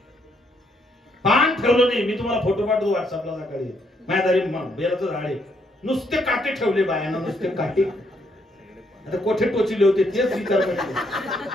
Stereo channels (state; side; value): normal; both; correlation 0.73